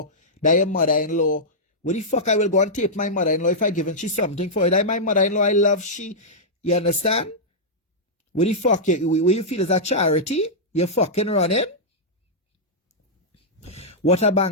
that your mother-in-law. What the fuck I will go and tape my mother-in-law if I given she something for it? That my mother-in-law, I love she. You understand? What the fuck you feel is a charity? You're fucking running? What a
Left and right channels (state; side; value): normal; both; correlation -0.10